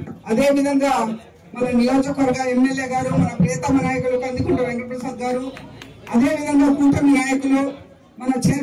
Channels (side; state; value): both; identical; correlation 1.00